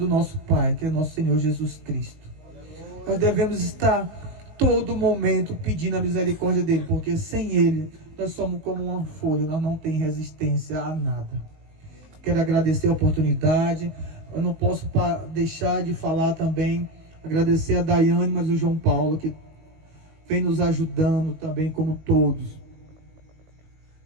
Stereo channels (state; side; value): late; left; 19 ms